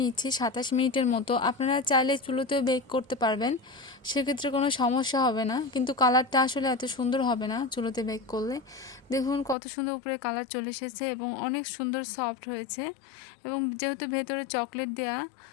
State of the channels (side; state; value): right; drops out; at 9.6 s